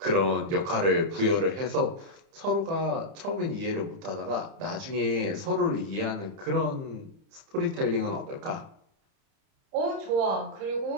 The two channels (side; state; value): left; late; 30 ms